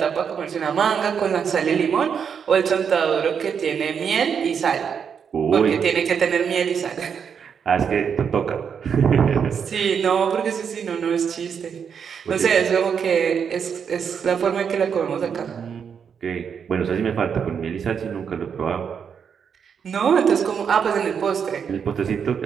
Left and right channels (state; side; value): quieter; left; 7.1 dB